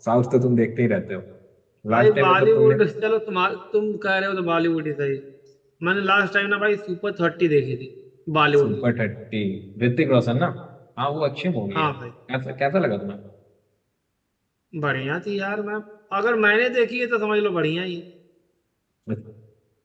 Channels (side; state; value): both; identical; correlation 1.00